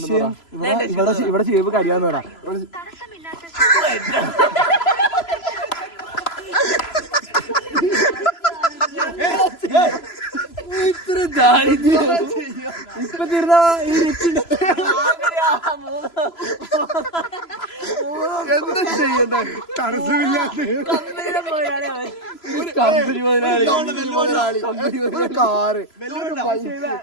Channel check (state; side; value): late; right; 3.0 ms